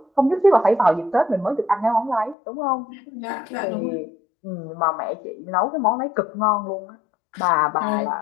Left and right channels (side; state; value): right; drops out; at 2.4 s